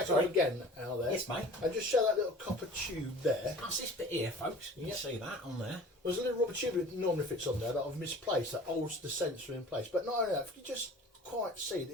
again out there, Yes, mate. and just show that little copper tube there. That's this bit here, folks. You can see that on there. There's a little rubber tube that normally fits on there that I've misplaced that holds the sensor in place. But not only that, if you just quite see it,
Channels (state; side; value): normal; both; correlation 0.44